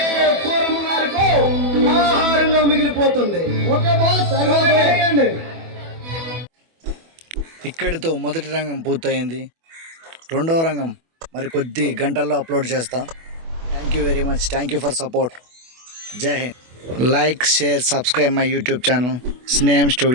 కూరములకు ఆహారంగా మిగిలిపోతుంది. ఇక్కడితో మొదటి రంగం పూర్తయింది. రెండవ రంగం మరి కొద్ది గంటల్లో అప్లోడ్ చేస్తా. Thank you very much. Thank you for support. Jai Hind. Like, share, subscribe my YouTube channel Sneham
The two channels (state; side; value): late; left; 24 ms